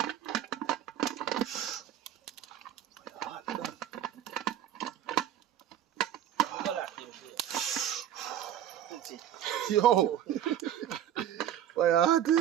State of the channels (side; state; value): left; quieter; 10.8 dB